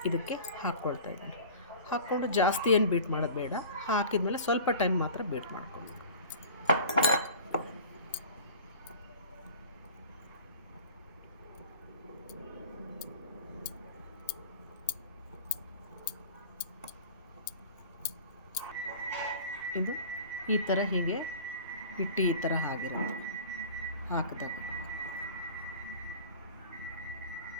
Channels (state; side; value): inverted; both; correlation -0.41